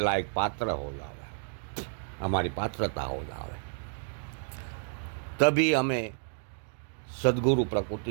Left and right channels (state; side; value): silent; left; digital silence